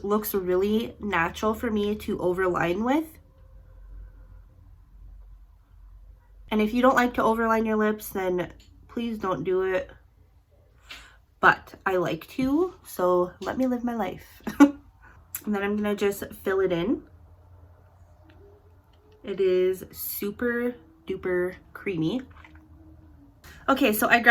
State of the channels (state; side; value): identical; both; correlation 1.00